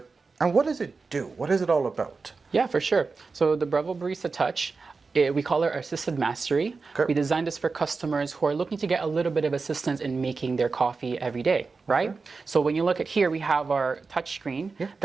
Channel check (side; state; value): left; quieter; 4.4 dB